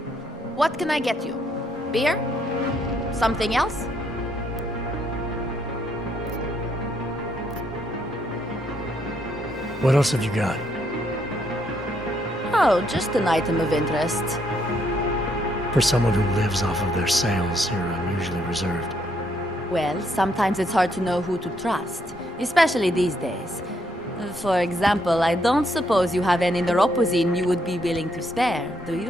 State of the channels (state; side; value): normal; both; correlation 0.73